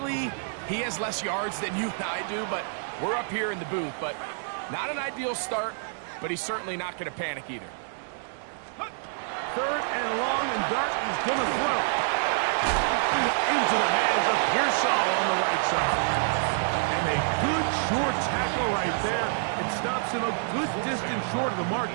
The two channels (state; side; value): silent; left; digital silence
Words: he has less yards than you and I do, but we're up here in the booth. But not an ideal start, but he's certainly not going to panic either. 3rd and long, and Dart is going to throw. Into the hands of Pearsall on the right side. And a good short tackle right there. It stops him a good distance short of the